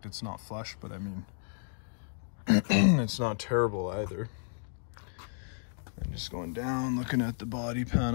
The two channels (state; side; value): silent; right; digital silence